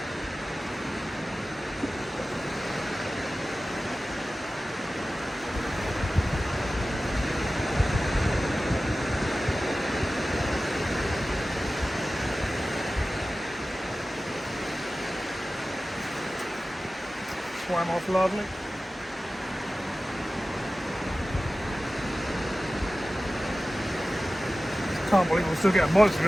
Swam off lovely. Can't believe I'm still getting bites, to be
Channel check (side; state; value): both; normal; correlation 0.96